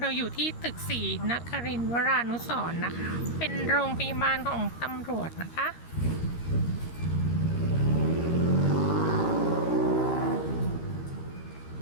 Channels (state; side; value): late; right; 13 ms